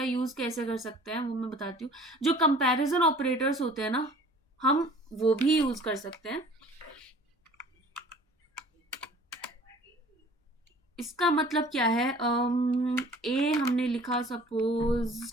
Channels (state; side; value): normal; both; correlation 0.49